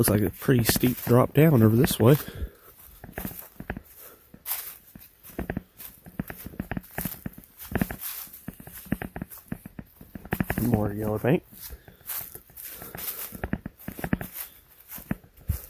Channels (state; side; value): identical; both; correlation 1.00